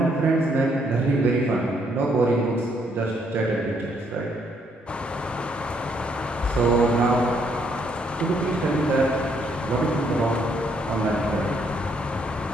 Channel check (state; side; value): normal; both; correlation 0.71